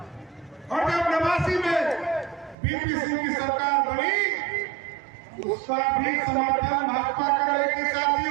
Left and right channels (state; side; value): drops out; left; at 2.6 s